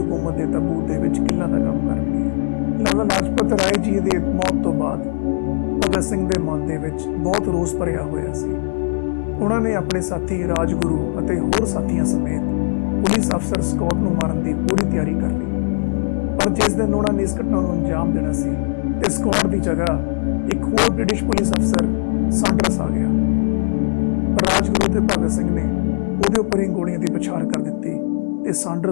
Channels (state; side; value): silent; right; digital silence